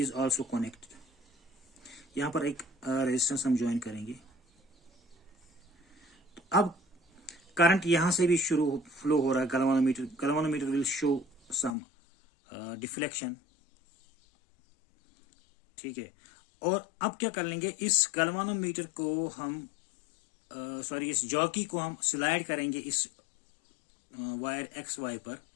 also connected. यहां पर एक रेजिस्टेंस हम ज्वाइन करेंगे। तो अब करंट यहां से भी फ्लो हो रहा है। Galvanometer will show some deflection. ठीक है, और अब क्या कर लेंगे, इस गैल्वेनोमीटर को हम इस जॉकी को हम स्लाइड करेंगे इस वायर XY पर।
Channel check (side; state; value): right; drops out; at 11.8 s